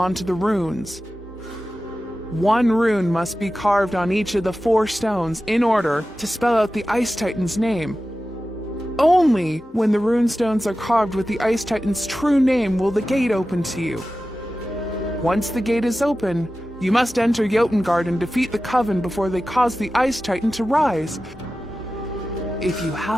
the runes. 1 rune must be carved on each of the 4 stones in order to spell out the Ice Titan's name. Only when the rune stones are carved with the Ice Titan's true name will the gate open to you. Once the gate is open, you must enter Jotengard and defeat the Coven before they cause the Ice Titan to rise. If you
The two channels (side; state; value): both; normal; correlation 0.94